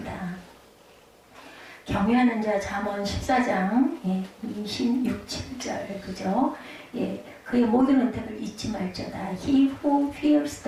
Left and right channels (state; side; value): identical; both; correlation 1.00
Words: 경외하는 자 잠언 14장 26, 7절 그죠? 예, 그의 모든 은택을 잊지 말자다. He who fears